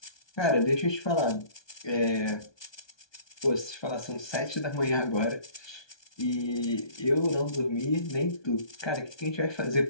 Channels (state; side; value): late; right; 1.2 ms